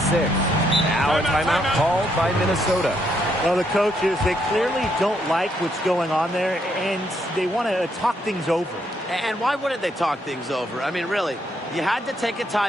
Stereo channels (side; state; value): both; normal; correlation 0.74